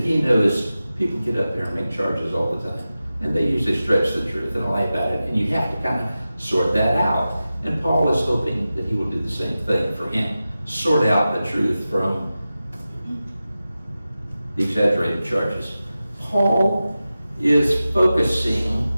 knows people get up there and make charges all the time. And they usually stretch the truth and lie about it. And you have to kind of sort that out. And Paul is hoping that he will do the same thing for him. Sort out the truth from the exaggerated charges. Paul is focusing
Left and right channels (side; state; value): both; inverted; correlation -0.94